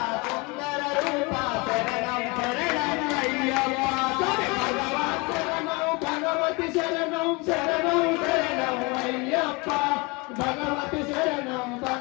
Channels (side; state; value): right; quieter; 27.0 dB